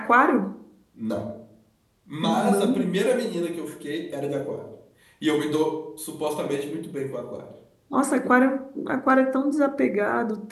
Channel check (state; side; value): identical; both; correlation 1.00